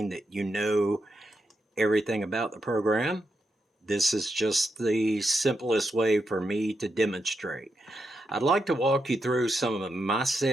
that you know everything about the program. This is just the simplest way for me to demonstrate. I'd like to walk you through some of my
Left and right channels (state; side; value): normal; both; correlation 0.84